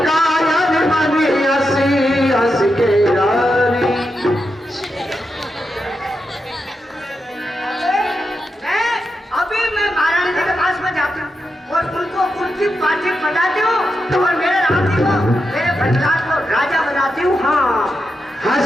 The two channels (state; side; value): normal; both; correlation 0.86